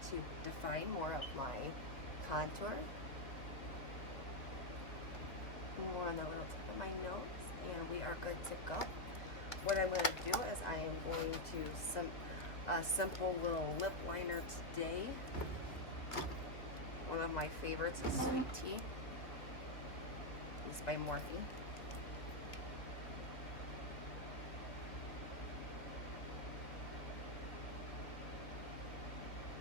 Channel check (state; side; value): late; right; 2.2 ms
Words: to define more of my contour. More on the little tip of my nose, and we are good to go. What I'm going to do is I am going to a simple little lip liner today. One of my favorites is Sweet Tea. This is by Morphe.